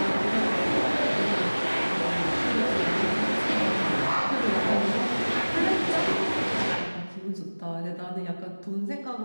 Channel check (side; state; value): both; inverted; correlation -1.00